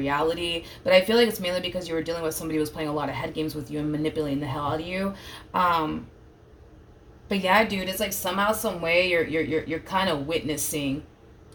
But I feel like it's mainly because you were dealing with somebody who was playing a lot of head games with you and manipulating the hell out of you. But yeah, dude, it's like somehow, some way, you're kind of witnessing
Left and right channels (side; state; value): both; identical; correlation 1.00